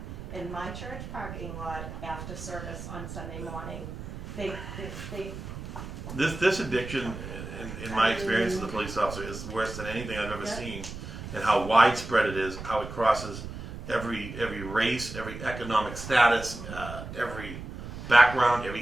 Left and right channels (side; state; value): right; noise; rumble, 10 dB below the sound